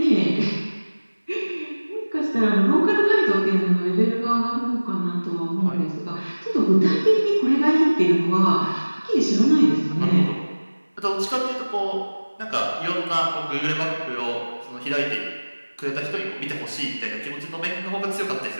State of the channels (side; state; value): both; inverted; correlation -1.00